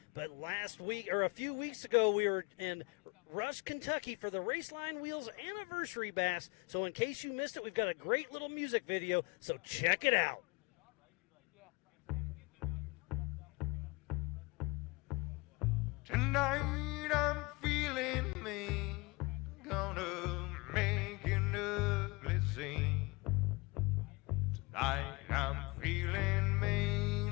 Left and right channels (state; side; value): quieter; right; 25.6 dB